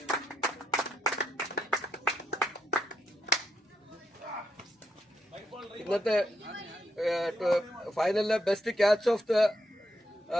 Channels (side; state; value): both; normal; correlation 0.80